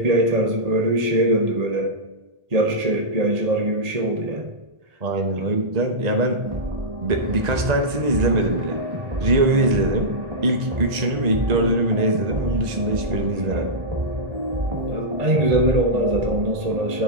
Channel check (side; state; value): left; late; 1.9 ms